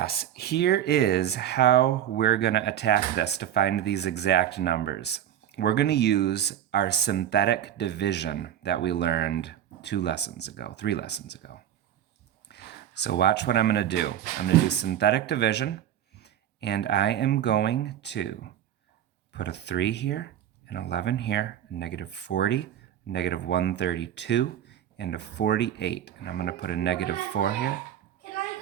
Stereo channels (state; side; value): quieter; left; 10.6 dB